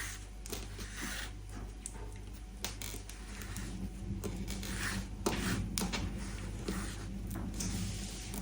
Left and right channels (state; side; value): identical; both; correlation 1.00